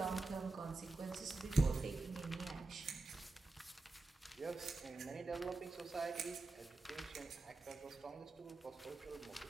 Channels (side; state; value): left; quieter; 3.3 dB